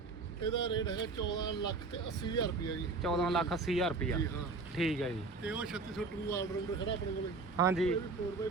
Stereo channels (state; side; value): quieter; left; 3.9 dB